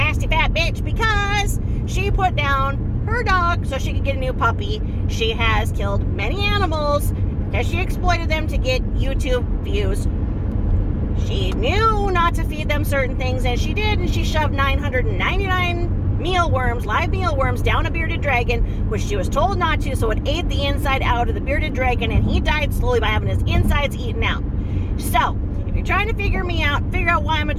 fat bitch because she put down her dog so she could get a new puppy. She has killed many animals because she exploited them to get YouTube views. She knew not to feed them certain things, and she did, and she shoved 999 live mealworms down a bearded dragon, which she was told not to, so it ate the inside out of the bearded dragon, and he died slowly by having his insides eaten out. So, if you're trying to figure out why I'm a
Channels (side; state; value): both; identical; correlation 1.00